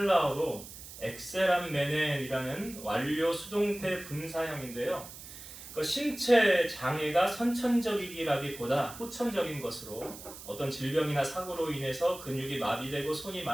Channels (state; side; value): noise; right; hiss, 14 dB below the sound